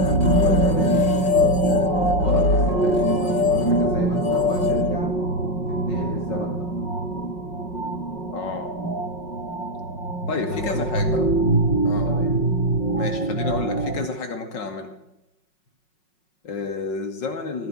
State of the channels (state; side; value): late; right; 5.5 ms